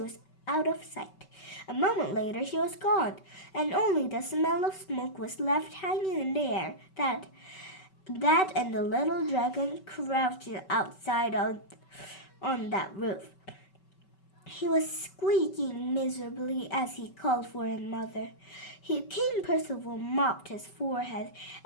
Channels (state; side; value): late; right; 5.3 ms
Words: out of sight. A moment later she was gone, and only the smell of smoke was left hanging in the air. That and the little dragon crouching outside on that roof. He was squeaking miserably as he called for his mother. King Percival mopped his forehead